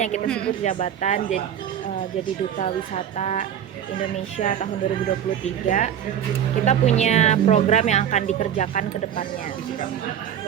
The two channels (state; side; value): quieter; left; 9.6 dB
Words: yang kita sebut jabatan jadi Duta Wisata Indonesia tahun 2023, kita punya program yang akan dikerjakan ke depannya.